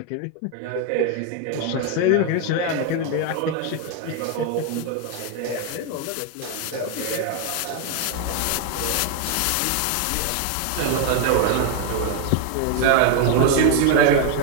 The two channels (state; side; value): different; both; correlation 0.01